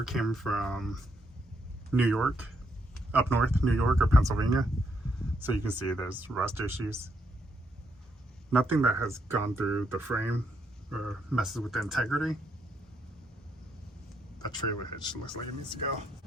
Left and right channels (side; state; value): both; normal; correlation 0.76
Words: came from New York, up north, New York or Pennsylvania. So you can see there's rust issues. Nothing that has gone through the frame or messes with the integrity. That trailer hitch looks like it needs to go.